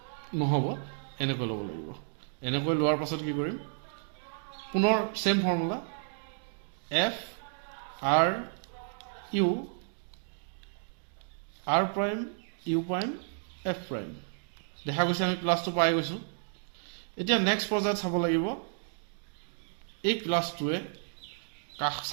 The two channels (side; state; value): left; silent; digital silence